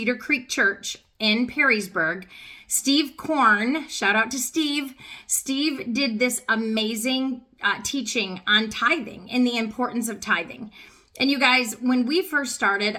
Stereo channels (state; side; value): identical; both; correlation 1.00